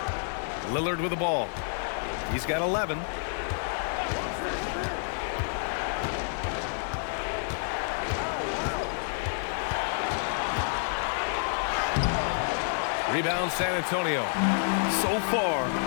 Lillard with the ball. He's got 11. Rebound San Antonio. So far,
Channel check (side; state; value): right; silent; 59 dB below the other